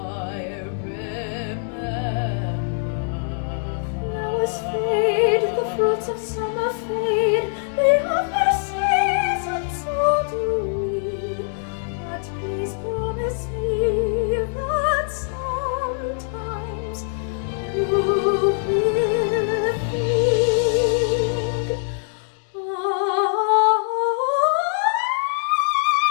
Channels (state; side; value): silent; right; digital silence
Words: remember. Flowers fade, the fruits of summer fade, they have their season, so do we. But please promise me that sometimes you will think